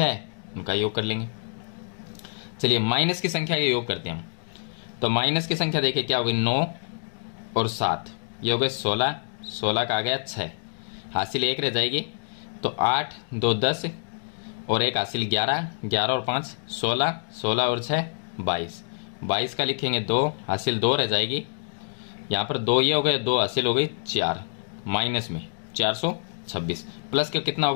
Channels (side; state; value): right; silent; digital silence